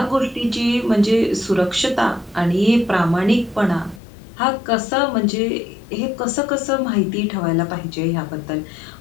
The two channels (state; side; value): drops out; right; at 4.0 s